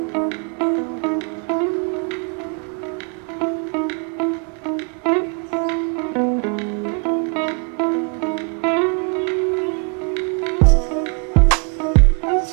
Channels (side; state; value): left; quieter; 34.8 dB